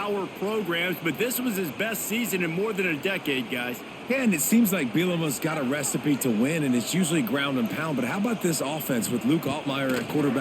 programs, but this was his best season in more than a decade, guys. Yeah, and it seems like Bielema's got a recipe to win, and it's usually ground and pound. But how about this offense with Luke Altmaier at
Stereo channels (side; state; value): both; identical; correlation 1.00